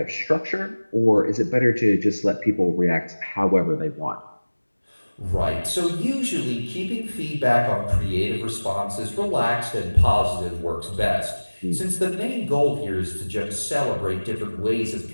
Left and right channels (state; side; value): inverted; both; correlation -1.00